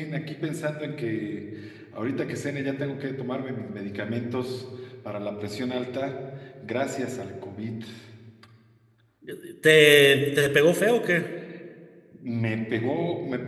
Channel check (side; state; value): both; identical; correlation 1.00